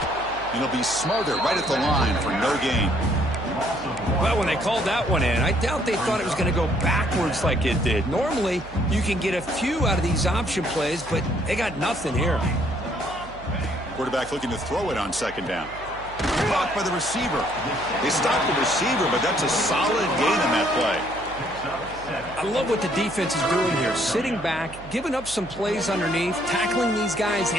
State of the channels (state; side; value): noise; right; hum, 17 dB below the sound